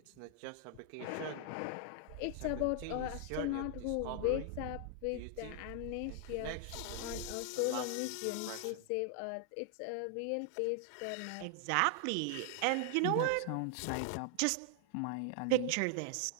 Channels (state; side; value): different; both; correlation 0.00